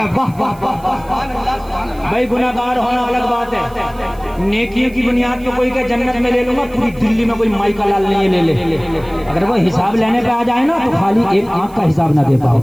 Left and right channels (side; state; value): right; noise; hiss, 25 dB below the sound